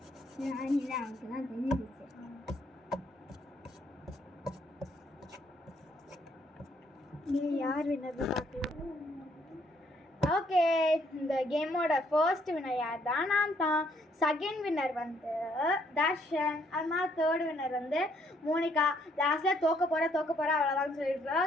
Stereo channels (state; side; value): normal; both; correlation 0.69